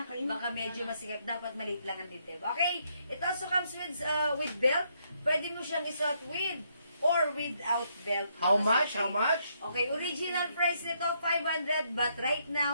baka medyo masigat. Dapat maliit lang ang dibdib. Okay? It also comes with belt. Pwede mo siyang isuot with or without belt. How much? How much? Okay, original price nito 500 but right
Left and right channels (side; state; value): both; inverted; correlation -0.74